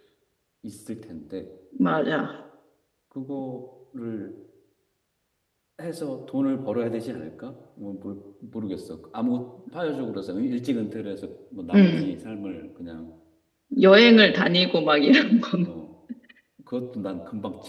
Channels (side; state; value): both; identical; correlation 1.00